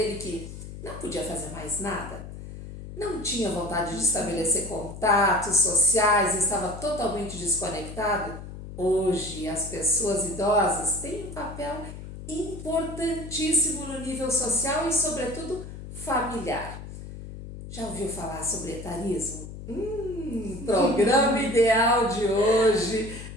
que não podia fazer mais nada, não tinha vontade de estabelecer contatos sociais, estava totalmente desconectado, hoje as pessoas idosas têm um papel importantíssimo no nível social e, sobretudo, familiar. Já ouviu falar sobre etarismo? Programa ideal de hoje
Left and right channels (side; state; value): left; noise; hum, 11 dB below the sound